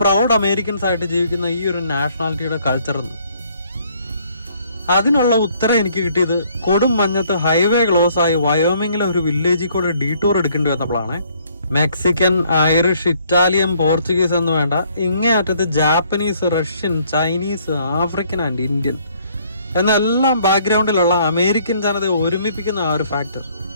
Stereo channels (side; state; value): both; inverted; correlation -0.64